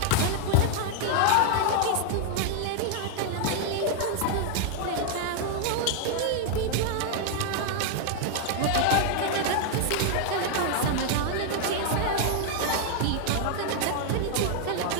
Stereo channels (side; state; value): both; different; correlation 0.00